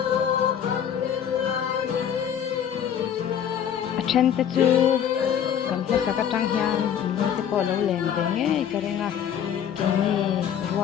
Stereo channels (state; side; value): quieter; right; 9.0 dB